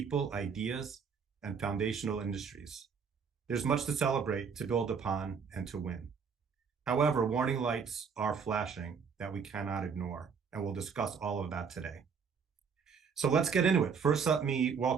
ideas, and foundational industries. There's much to celebrate, to build upon, and to win. However, warning lights are flashing that we cannot ignore, and we'll discuss all of that today. So let's get into it. First, let me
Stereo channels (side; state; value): left; quieter; 6.1 dB